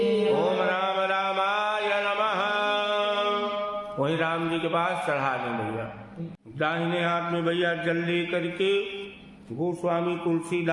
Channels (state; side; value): identical; both; correlation 1.00